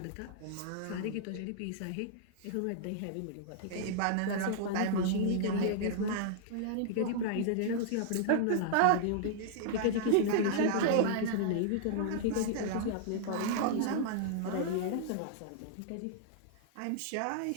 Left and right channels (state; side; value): different; both; correlation -0.01